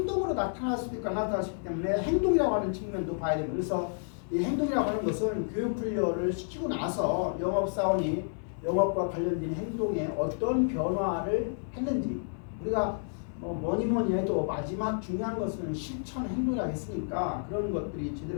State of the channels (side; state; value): right; silent; 58 dB below the other